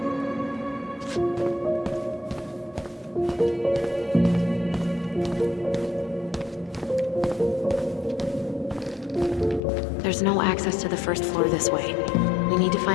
There's no access to the first floor this way. We need to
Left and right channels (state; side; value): drops out; right; at 9.6 s